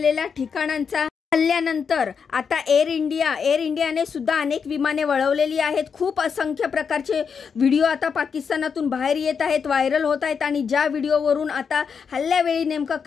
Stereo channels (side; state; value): right; quieter; 6.3 dB